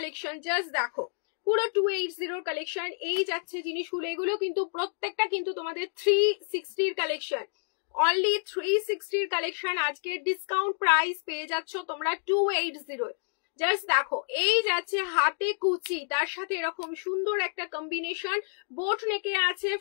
জাস্ট দেখো পুরো 280 কালেকশন, এই যাচ্ছে জিনিসগুলো, এগুলো কিন্তু প্রত্যেকটা কিন্তু তোমাদের 360 কালেকশন, অনলি 360 কালেকশন। আজকে ডিসকাউন্ট প্রাইস পেয়ে যাচ্ছ তোমরা 280। জাস্ট দেখো এই যাচ্ছে হাতে কুচি, তার সাথে এরকম সুন্দর একটা কম্বিনেশন, বোট নেকে আছে,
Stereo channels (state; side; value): silent; right; digital silence